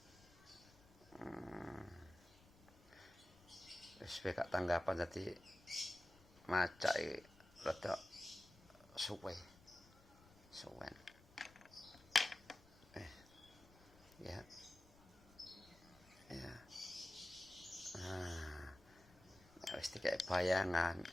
Wis gak tanggapan dadi macak iki rada suwe. Suwen. Ya. Ya. Wis dikek bayangan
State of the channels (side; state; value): left; noise; rumble, 24 dB below the sound